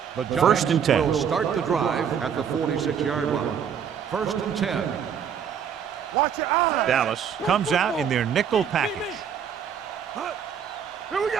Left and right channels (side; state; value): left; quieter; 7.8 dB